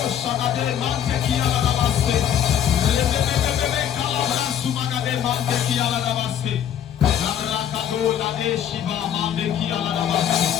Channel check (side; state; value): right; quieter; 9.6 dB